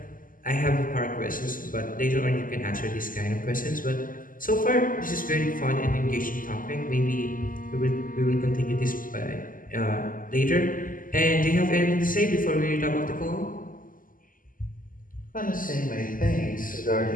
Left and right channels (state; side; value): late; right; 0.40 ms